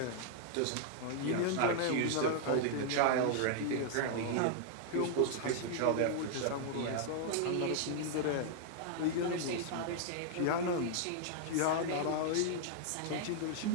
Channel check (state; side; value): different; both; correlation 0.00